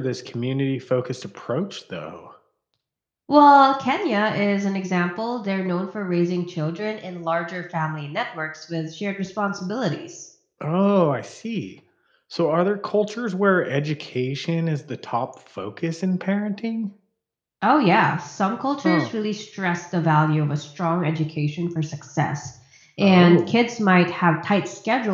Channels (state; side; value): identical; both; correlation 1.00